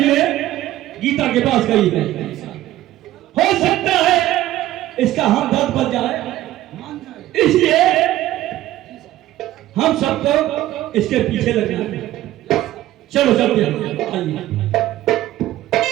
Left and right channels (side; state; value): left; quieter; 14.6 dB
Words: गीता के पास गई है। हो सकता है इसका हमदर्द बन जाए, इसलिए हम सबको इसके पीछे लगना है। चलो चलते हैं, आइए।